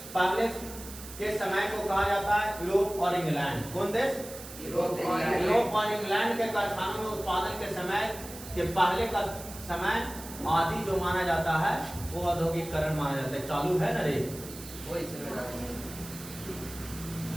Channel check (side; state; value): right; noise; hiss, 14 dB below the sound